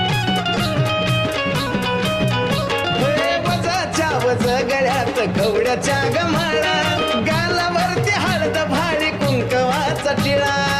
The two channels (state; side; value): identical; both; correlation 1.00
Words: गळ्यात कवड्याच्या गमाळा गालावरती हळद भारी कुंकवाचा टिळा